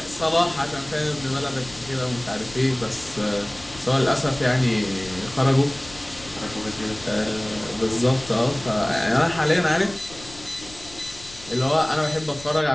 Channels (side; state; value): left; noise; rumble, 18 dB below the sound